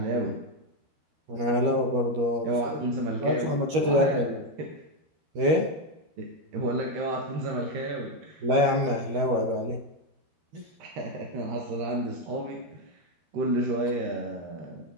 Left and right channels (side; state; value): left; late; 13 ms